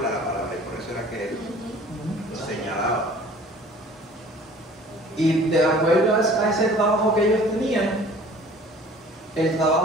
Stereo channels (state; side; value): normal; both; correlation 0.49